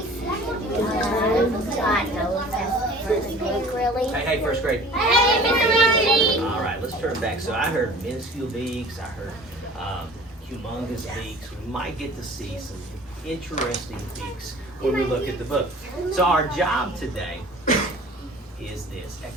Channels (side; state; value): both; normal; correlation 0.46